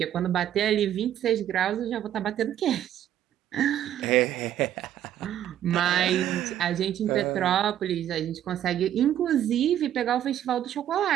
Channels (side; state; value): left; quieter; 11.1 dB